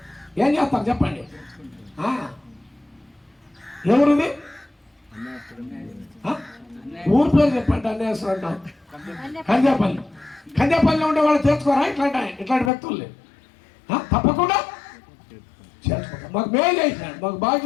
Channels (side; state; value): right; drops out; at 12.7 s